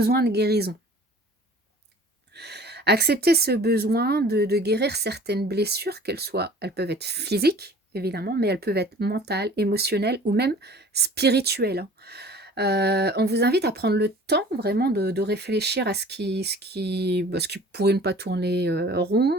de guérison. Accepter ce besoin de guérir certaines blessures, elles peuvent être physiques, évidemment, mais elles peuvent être mentales, émotionnelles ou même spirituelles, hein. On vous invite à prendre le temps vraiment de réfléchir à ce qui pourrait ne pas tourner,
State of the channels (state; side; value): normal; both; correlation 0.47